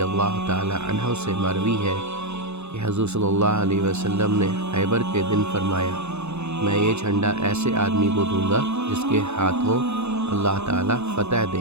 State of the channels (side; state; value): left; late; 0.81 ms